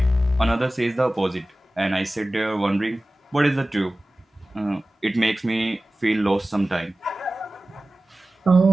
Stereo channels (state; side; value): normal; both; correlation 0.97